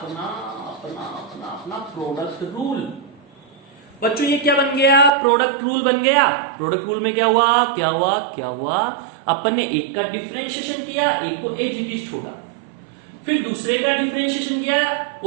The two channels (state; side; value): drops out; left; at 5.1 s